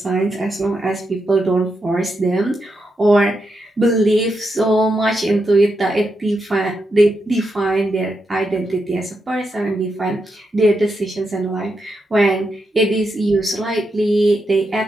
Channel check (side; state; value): both; normal; correlation 0.84